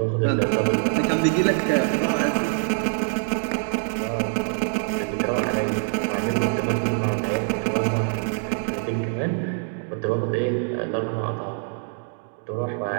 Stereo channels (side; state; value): left; silent; 59 dB below the other